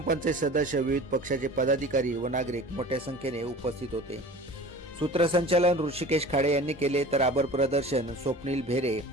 सदस्य, विविध पक्षाचे पदाधिकारी व नागरिक मोठ्या संख्येने उपस्थित होते. सूत्रसंचालन ऋषिकेश खाडे यांनी केले तर आभार प्रदर्शन स्वप्नील भेरे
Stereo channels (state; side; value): normal; both; correlation 0.40